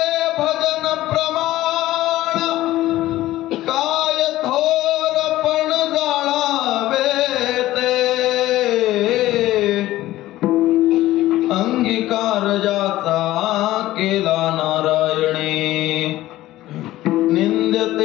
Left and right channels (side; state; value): right; quieter; 15.7 dB